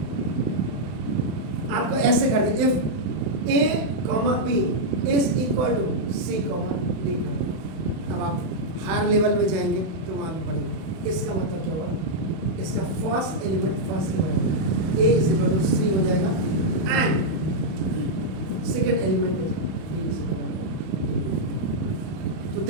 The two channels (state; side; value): late; left; 31 ms